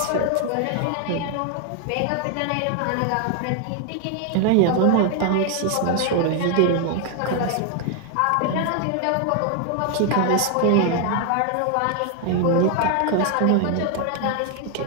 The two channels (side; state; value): both; different; correlation 0.00